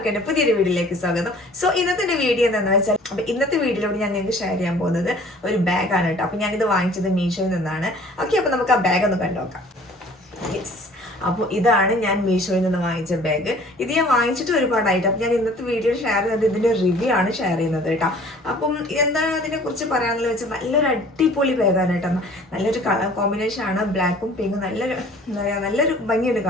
എൻ്റെ പുതിയൊരു വീഡിയോയിലേക്ക് സ്വാഗതം. സോ ഇന്നത്തെ വീഡിയോ എന്താണെന്ന് വെച്ചാൽ, അപ്പോൾ ഇന്നത്തെ വീഡിയോയിലൂടെ ഞാൻ നിങ്ങൾക്ക് ഷെയർ ചെയ്യാൻ പോകുന്നത് ഒരു ബാഗാണ് കേട്ടോ. അപ്പോൾ ഞാനിത് വാങ്ങിച്ചത് മീഷോയിൽ നിന്നാണ്. ഓക്കെ, അപ്പോൾ നമുക്ക് ആ ബാഗ് ഒന്ന് കണ്ടുനോക്കാം. യെസ്, അപ്പോൾ ഇതാണ് ഞാൻ മീഷോയിൽ നിന്ന് വാങ്ങിച്ച ബാഗ്. ഇത് ഞാൻ വാങ്ങിച്ചിട്ട് ഒരുപാടായിട്ട്. അപ്പം ഞാൻ ഇന്നത്തെ വീഡിയോ ഷെയർ ചെയ്യുന്നത് ഇതിൻ്റെ റിവ്യൂ ആണ് ഷെയർ ചെയ്യുന്നത് കേട്ടോ. അപ്പം എന്താണ് അതിനെക്കുറിച്ച് പറയാമെന്ന് വെച്ചാൽ, നല്ലൊരു അടിപൊളി ബാഗാണ് കേട്ടോ. നല്ലൊരു കളർ കോമ്പിനേഷൻ ആണ്, ബ്ലാക്കും പിങ്കും. നല്ലൊരു എന്താ പറയുക, നല്ലൊരു ഭംഗിയുണ്ട്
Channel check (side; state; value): both; normal; correlation 0.51